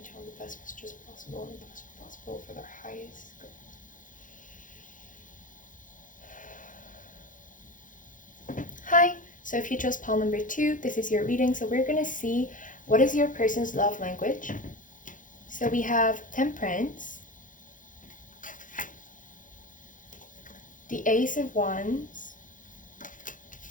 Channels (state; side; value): late; right; 0.38 ms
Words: channel the best messages possible and best possible for their highest good. Hi, so if you chose pile number 2, this is your reading. So we're gonna see what is your person's love language. So we have Temperance, the Ace of Wands,